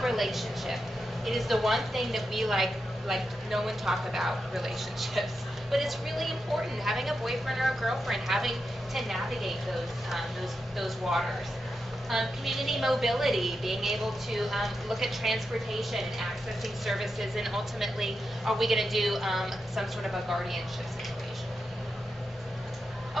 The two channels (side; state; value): both; normal; correlation 0.88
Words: relationship. It is the one thing that we like no one talk about relationships, but it's really important. Having a boyfriend or a girlfriend, having to navigate those waters. Community mobility, being able to look at transportation and accessing services, and ultimately, are we going to do some sort of a guardianship situation?